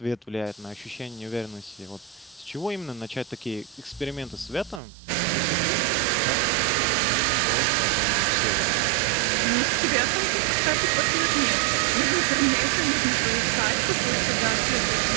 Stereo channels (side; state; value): left; drops out; at 4.8 s